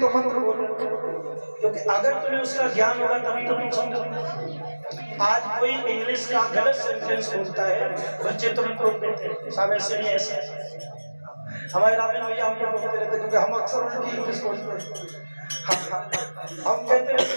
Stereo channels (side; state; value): both; inverted; correlation -1.00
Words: मंत्र बोलो, क्योंकि अगर तुम्हें उसका ज्ञान होगा तभी तो तुम समझो। आज कोई इंग्लिश का गलत सेंटेंस बोलता है, बच्चे तुरंत रोक देते हैं, साहब ऐसे नहीं ऐसे। हमारे रामेन भैया हमको बोलते रहते, क्योंकि हम अक्सर उल्टी इंग्लिश बोलते हैं। हम कहते रहते